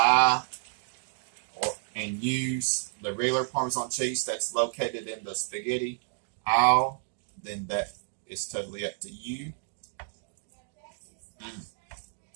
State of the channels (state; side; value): silent; left; digital silence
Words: and use the regular Parmesan cheese that's located in the spaghetti aisle, then that is totally up to you.